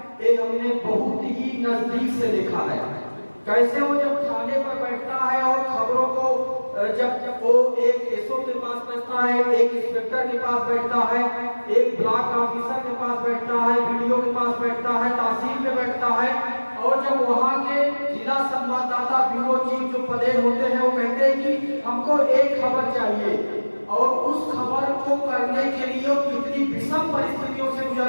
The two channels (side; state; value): both; inverted; correlation -1.00